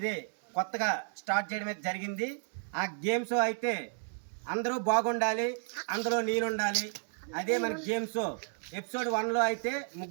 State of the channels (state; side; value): silent; left; 55 dB below the other